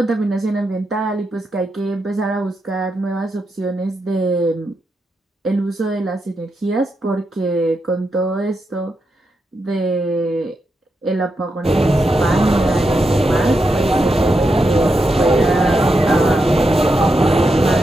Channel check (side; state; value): both; normal; correlation 0.85